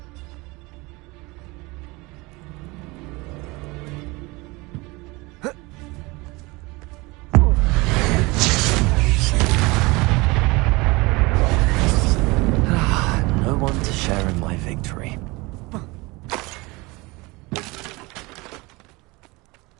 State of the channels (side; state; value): left; quieter; 24.0 dB